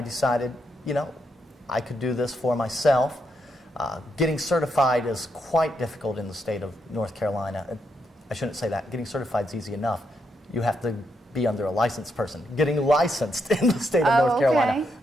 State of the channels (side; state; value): both; normal; correlation 0.80